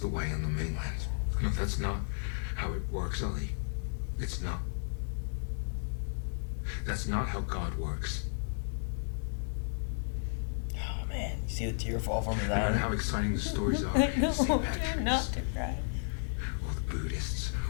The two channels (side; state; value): right; silent; digital silence